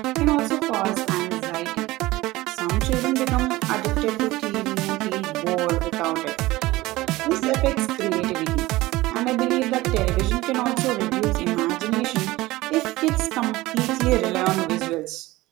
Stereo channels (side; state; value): left; quieter; 18.9 dB